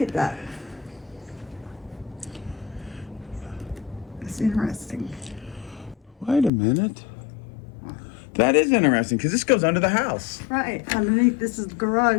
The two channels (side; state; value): right; drops out; at 6.5 s